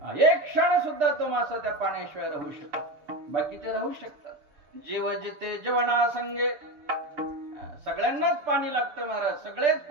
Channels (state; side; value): late; left; 6.8 ms